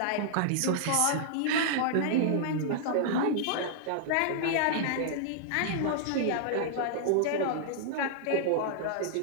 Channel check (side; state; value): both; different; correlation -0.01